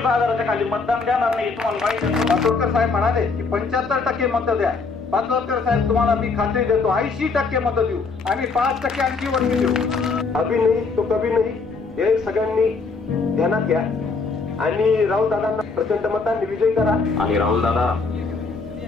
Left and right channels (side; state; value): right; quieter; 4.4 dB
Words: हजाराच्या खाली मतदान देणार नाही. तुम्हाला माहिती आहे. पाटोळकर साहेब म्हणाले की 75% मत द्या. पाटोळकर साहेब तुम्हाला मी खात्री देतो 80% मत देऊ. आम्ही 5% आणखी वरती देऊ. अभी नाही तो कभी नाही हे सगळ्यांनी ध्यानात घ्या आणि राहुल दादांना प्रचंड मतांनी विजयी करा. आणि राहुल दादा